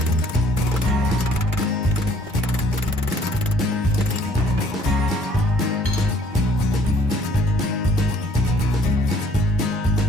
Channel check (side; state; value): both; normal; correlation 0.58